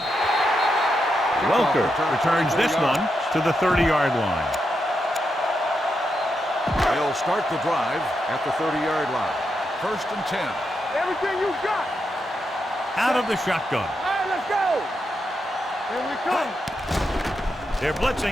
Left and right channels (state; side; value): normal; both; correlation 0.84